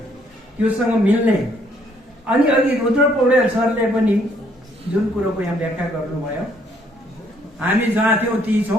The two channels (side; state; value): both; normal; correlation 0.67